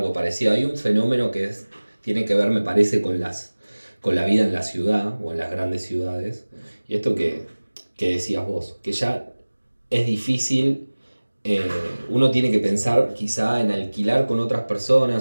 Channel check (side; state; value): both; inverted; correlation -1.00